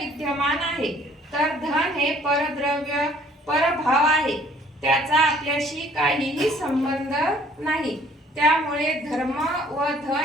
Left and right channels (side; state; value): both; normal; correlation 0.58